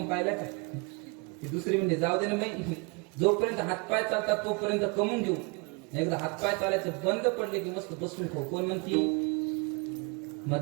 पाहिलं का? ती दुसरी म्हणजे जाऊ दे ना बाई, जोपर्यंत हातपाय चालतात तोपर्यंत कमवून घेऊ. एकदा हातपाय चालायचं बंद पडले की मस्त बसून खाऊ. कोण म्हणती?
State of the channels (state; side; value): quieter; left; 30.5 dB